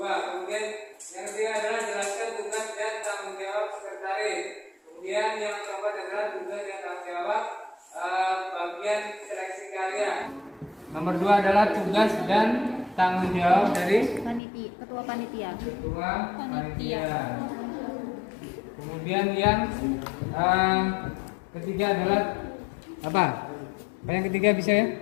Kemudian yang ketiga adalah jelaskan tugas dan tanggung jawab sekretaris. Kemudian yang keempat adalah tugas dan tanggung jawab bagian seleksi karya. Nomor 2 adalah tugas dan tanggung jawab dari ketua panitia. Ketua panitia. Kemudian yang ketiga adalah apa? Yang ketiga bisa ya?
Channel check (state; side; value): drops out; right; at 14.4 s